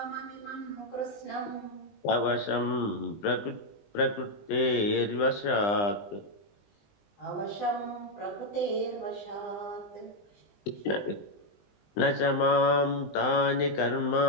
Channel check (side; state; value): right; late; 20 ms